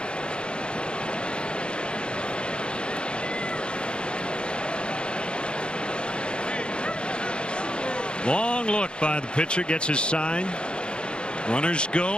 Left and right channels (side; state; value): right; late; 0.054 ms